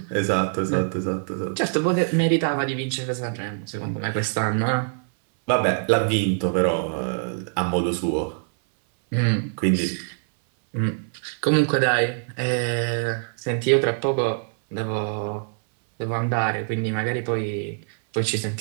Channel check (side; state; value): left; silent; 63 dB below the other